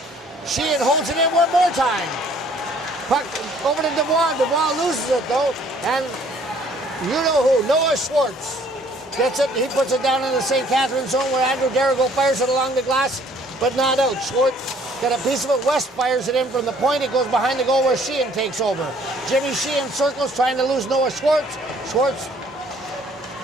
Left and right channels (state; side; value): normal; both; correlation 0.59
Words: Sheehan holds it in one more time. Puck over to Dubois. Dubois loses it, though. And you know who, Noah Schwartz gets it. He puts it down in the St. Catharines zone where Andrew Darrigo fires it along the glass, but not out. Schwartz got a piece of it. West fires it in from the point. It goes behind the goal where Sheehan takes over. Jimmy Sheehan circles, trying to lose Noah Schwartz. Schwartz.